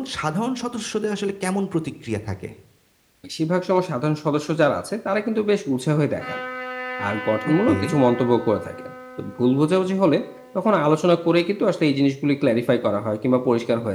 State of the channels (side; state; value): both; identical; correlation 1.00